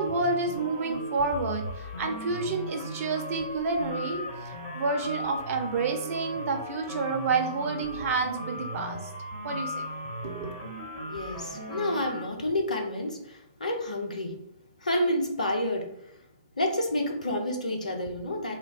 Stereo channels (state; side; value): inverted; both; correlation -0.52